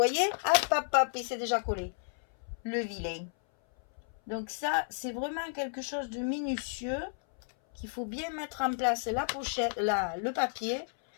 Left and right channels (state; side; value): silent; right; 56 dB below the other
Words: hop, hop, hop, et c'est déjà collé. Le vilain. Donc ça, c'est vraiment quelque chose de minutieux. Qu'il faut bien mettre en place la pochette, le papier.